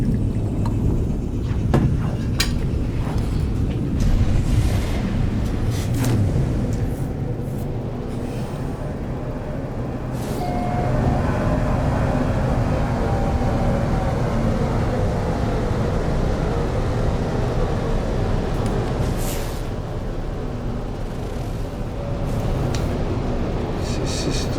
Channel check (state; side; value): identical; both; correlation 1.00